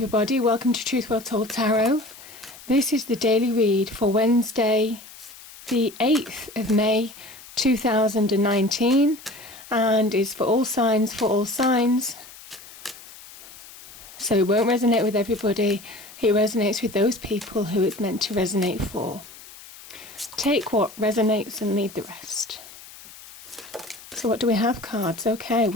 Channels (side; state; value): left; noise; hiss, 18 dB below the sound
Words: welcome to Truth Well Told Tarot. This is the daily read for Wednesday the 8th of May 2019 and is for all signs, So it won't resonate with everybody, it resonates with those people who it's meant to resonate for. Take what resonates and leave the rest. So what do we have, cards? Okay,